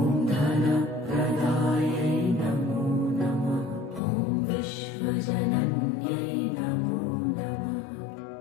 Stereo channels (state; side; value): drops out; right; at 4.0 s